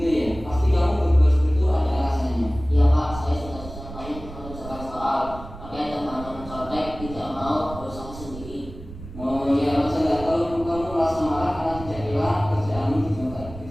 ya, pasti kamu berbuat seperti itu ada alasannya. Iya Pak, saya sudah susah banyak mengerjakan soal, pakai temannya mencontek, tidak mau berusaha sendiri. Oh ya, masa nggak tahu kamu merasa marah karena tidak rela kerjaanmu dicontek,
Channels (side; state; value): right; noise; rumble, 13 dB below the sound